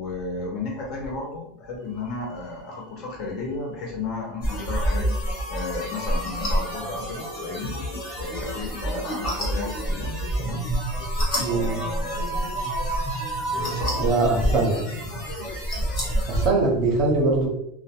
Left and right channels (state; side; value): normal; both; correlation 0.42